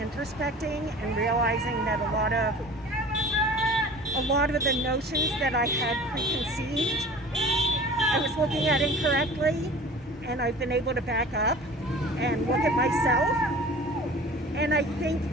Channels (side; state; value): both; normal; correlation 0.42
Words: and realizing that a lot of the notions that I had preconceived, I was looking at incorrectly, and I've been able to back up and look at myself. And I think